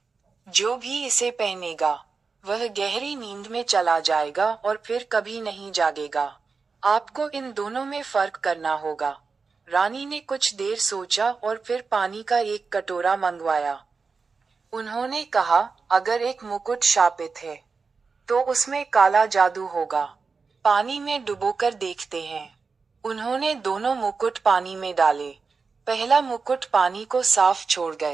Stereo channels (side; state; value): left; quieter; 4.7 dB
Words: जो भी इसे पहनेगा, वह गहरी नींद में चला जाएगा और फिर कभी नहीं जागेगा। आपको इन दोनों में फर्क करना होगा। रानी ने कुछ देर सोचा और फिर पानी का एक कटोरा मंगवाया। उन्होंने कहा, अगर एक मुकुट शापित है, तो उसमें काला जादू होगा। पानी में डुबोकर देखते हैं। उन्होंने दोनों मुकुट पानी में डाले। पहला मुकुट पानी को साफ छोड़